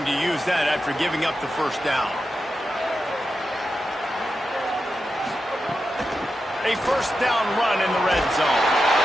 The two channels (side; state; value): both; normal; correlation 0.89